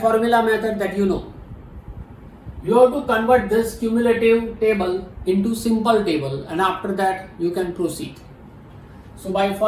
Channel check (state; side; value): identical; both; correlation 1.00